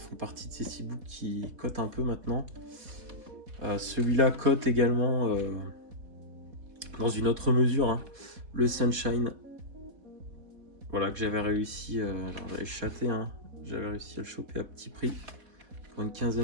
partie de ces steelbooks qui cotent un peu maintenant. Celui-là cote également dans une autre mesure, hein, le Sunshine. Voilà, que j'avais réussi, alors j'avais chaté, hein, j'avais réussi à le choper à petit prix pour une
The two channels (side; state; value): left; late; 4.1 ms